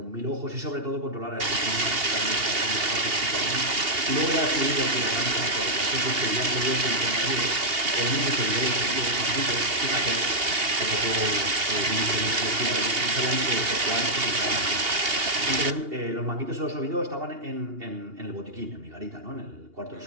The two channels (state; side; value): late; left; 2.8 ms